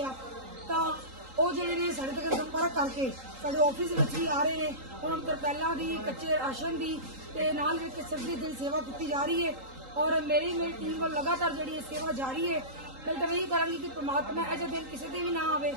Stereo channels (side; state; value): left; late; 3.8 ms